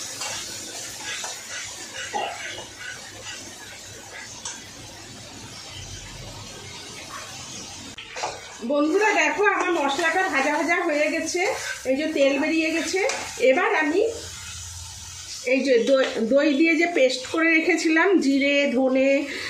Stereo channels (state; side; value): identical; both; correlation 1.00